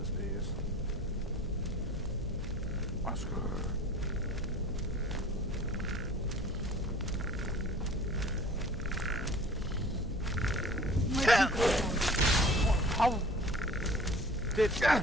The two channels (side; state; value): left; noise; hum, 10 dB below the sound